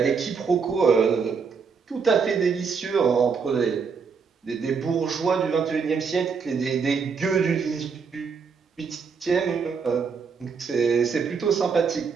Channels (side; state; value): left; quieter; 5.7 dB